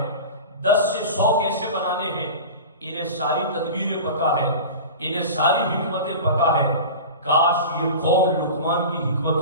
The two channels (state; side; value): inverted; both; correlation -0.32